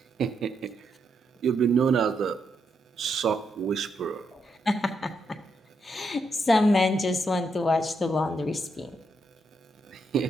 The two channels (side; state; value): both; normal; correlation 0.80